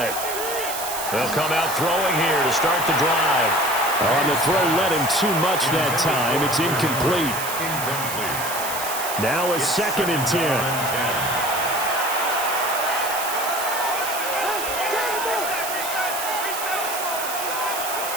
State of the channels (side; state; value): right; noise; hiss, 6 dB below the sound